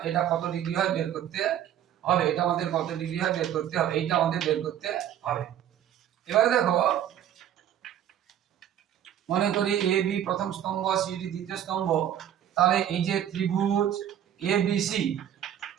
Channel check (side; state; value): left; quieter; 10.6 dB